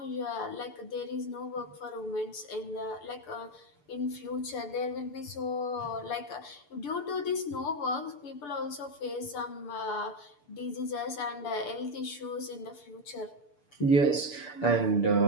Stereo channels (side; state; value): right; late; 6.8 ms